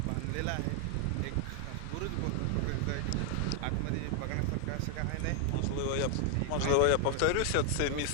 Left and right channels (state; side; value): different; both; correlation 0.00